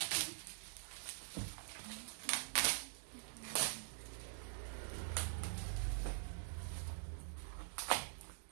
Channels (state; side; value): silent; left; digital silence